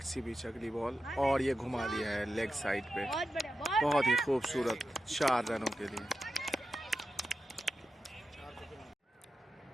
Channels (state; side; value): normal; both; correlation 0.90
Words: बीच अगली बॉल, और ये घुमा दिया है लेग साइड पे, बहुत ही खूबसूरत 4 रनों के लिए।